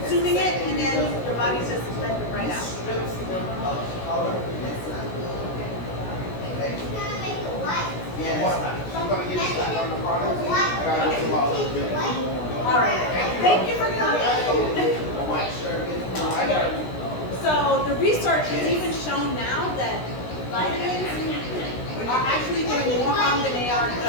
it and then your body's just letting it right out. All right. Thank you for coming. So the research has even shown now that vitamins are actually doing more harm than they are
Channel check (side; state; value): right; late; 16 ms